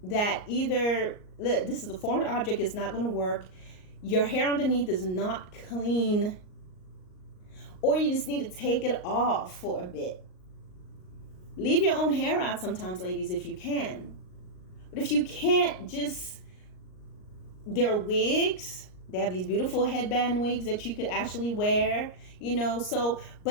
that either this is a foreign object, is not going to work, your hair underneath is not clean, or you just need to take it off for a bit. Leave your own hair out sometimes, ladies, if you can. But if you can't, there are wigs. They have these beautiful headband wigs that you could actually wear,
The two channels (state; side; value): late; right; 38 ms